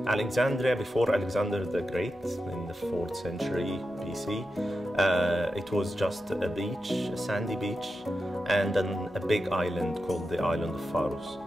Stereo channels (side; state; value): both; normal; correlation 0.89